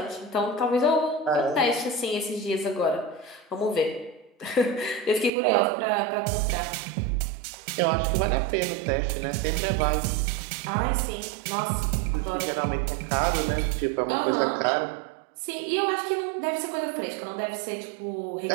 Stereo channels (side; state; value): left; drops out; at 5.3 s